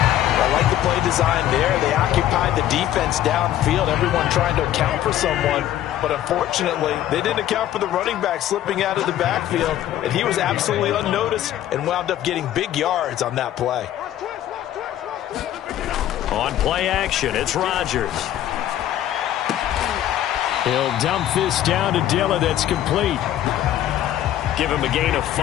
I like the play design there. They occupied the defense downfield, everyone trying to account for someone. But unfortunately, they didn't account for the running back slipping out of the backfield, and he was absolutely unnoticed and wound up getting big yards on that play. On play action, it's Rodgers. He'll dump this down to Dillon. That's complete. Give him a gain of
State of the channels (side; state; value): right; quieter; 12.4 dB